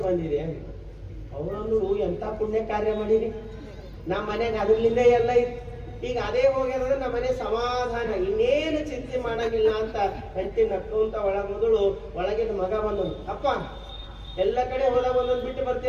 ಬಂದಿರಿ ಅಂತ. ಅವನು, ಎಂತ ಪುಣ್ಯ ಕಾರ್ಯ ಮಾಡಿರಿ, ನಮ್ಮ ಮನೆಗೆ ಅದ್ರಲಿಂದ ಎಲ್ಲ ಇತ್ತು, ಈಗ ಅದೇ ಹೋಗ್ಯಾದ್ರೆ ನಮ್ಮ ಮನೆ ಸಮಾಧಾನ, ಇನ್ನೇನು ಚಿಂತೆ ಮಾಡಂಗಿಲ್ಲ ಅಂತ ಹೆಂಡತಿ ನಕ್ಕೊಂತ ಮೊದಲು ಒಳಗಿನ ಮಗ ಬಂದನು. ಅಪ್ಪ, ಎಲ್ಲ ಕಡೆ ಹೋದಾಗ ಒಂದೊಂದು ಬಿಟ್ಟು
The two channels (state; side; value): identical; both; correlation 1.00